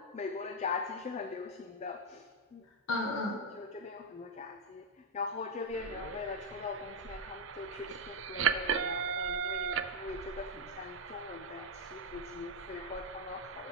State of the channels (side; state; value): both; normal; correlation 0.03